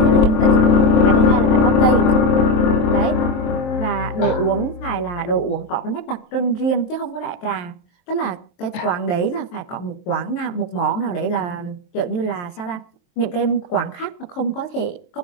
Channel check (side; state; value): right; late; 23 ms